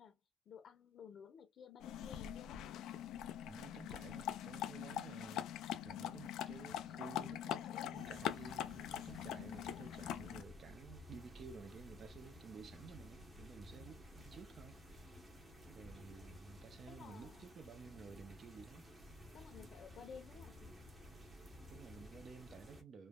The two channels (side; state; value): right; quieter; 6.3 dB